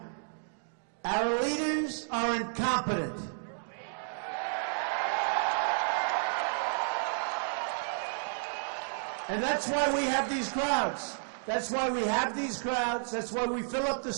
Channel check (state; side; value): silent; left; digital silence